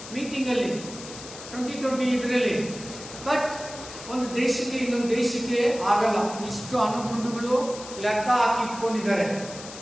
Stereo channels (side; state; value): left; noise; hiss, 13 dB below the sound